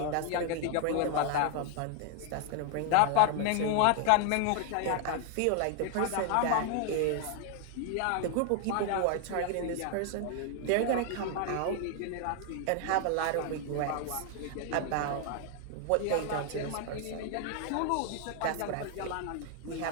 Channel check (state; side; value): different; both; correlation 0.00